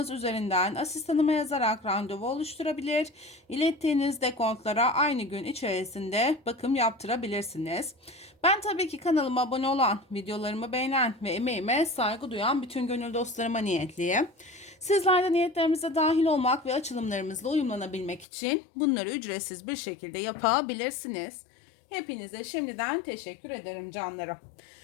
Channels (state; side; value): drops out; right; at 18.2 s